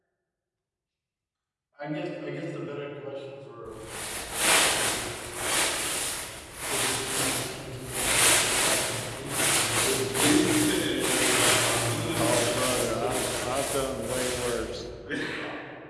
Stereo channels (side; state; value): both; identical; correlation 1.00